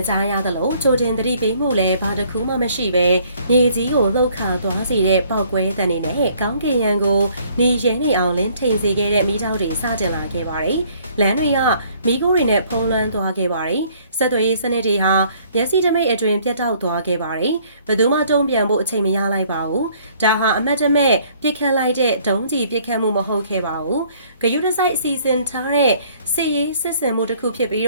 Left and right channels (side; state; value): both; inverted; correlation -0.60